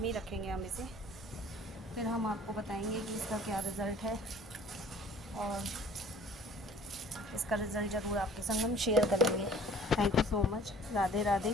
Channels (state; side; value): normal; both; correlation 0.51